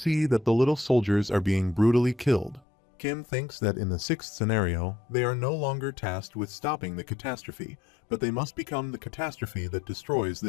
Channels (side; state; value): right; drops out; at 2.6 s